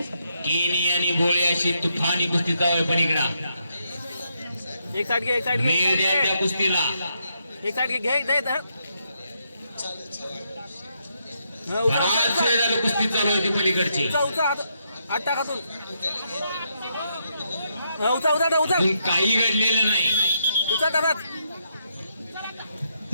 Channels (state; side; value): inverted; both; correlation -0.79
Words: केनी आणि गोळे अशी तुफानी कुस्ती जावं. पण इकडा एक साइड घे, एक साइड घे, मेळ द्या त्या कुस्तीला. एक साइड घे, घे दे धर. बराच वेळ झालं कुस्ती चालू होती पलीकडची. उचा उचा हात टाक हातून. उचा उचा उचा अजून काही घडलेलं नाही. उचा टाकात.